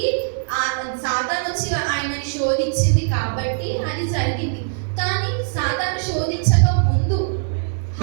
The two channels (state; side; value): silent; left; digital silence